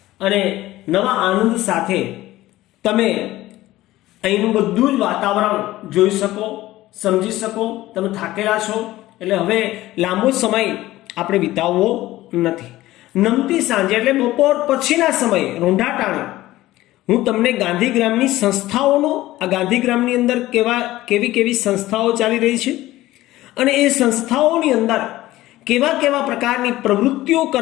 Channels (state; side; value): quieter; right; 16.4 dB